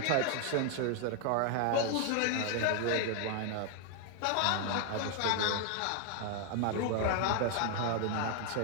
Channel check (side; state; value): both; different; correlation 0.00